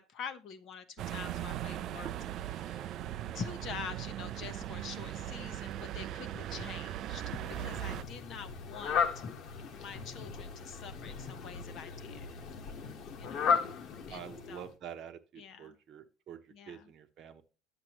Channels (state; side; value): normal; both; correlation 0.44